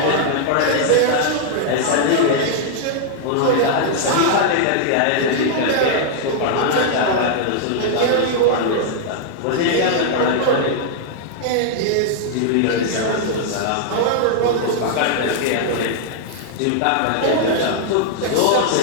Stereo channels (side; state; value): both; different; correlation -0.01